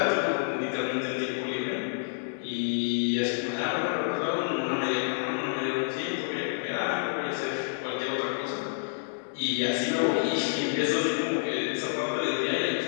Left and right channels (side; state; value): right; silent; digital silence